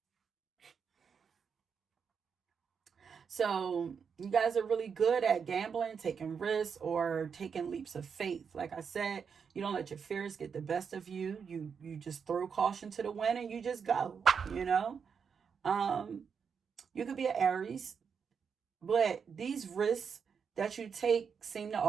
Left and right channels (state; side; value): quieter; left; 6.4 dB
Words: So you guys are really good at gambling, taking risks, or taking leaps of faith. Like I said, you don't let your fears get the best of you. You just throw caution to the wind and you just go. You know, um, you could be an Aries, but these risks that you take seem to